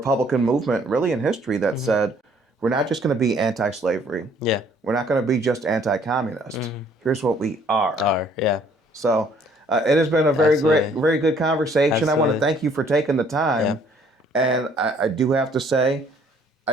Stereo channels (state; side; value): normal; both; correlation 0.61